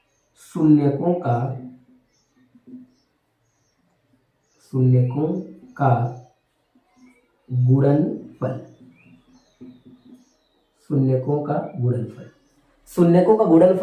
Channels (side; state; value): both; identical; correlation 1.00